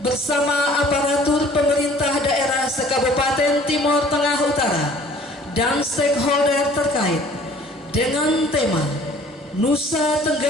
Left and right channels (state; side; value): normal; both; correlation 0.53